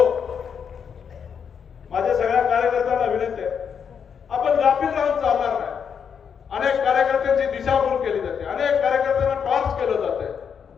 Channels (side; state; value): right; quieter; 7.1 dB